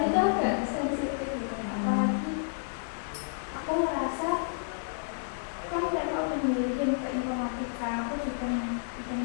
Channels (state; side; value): silent; right; digital silence